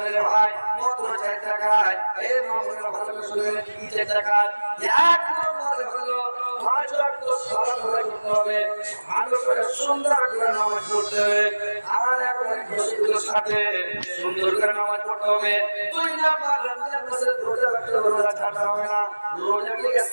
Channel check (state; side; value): inverted; both; correlation -1.00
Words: রে ভাই মাত্র 4 টাকায় এই মামলার ভালো করে শুনেন কি 4 টাকা এক নম্বরে হলো 5 ওয়াক্ত সালাত করতে হবে ভালো করে সুন্দর করে নামাজ পড়তে হবে আর একবারে খুশির সাথে সুন্দর করে নামাজ পড়তে হবে 2 নম্বর রমজান মাসের রোজা রাখতে হবে রোজা ছাড়তে হবে না রোজাকে